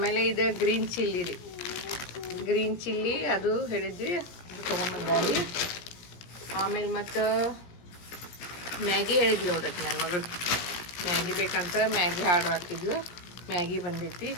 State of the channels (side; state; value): right; late; 17 ms